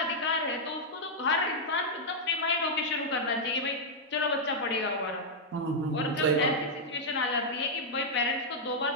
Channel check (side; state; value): both; normal; correlation -0.05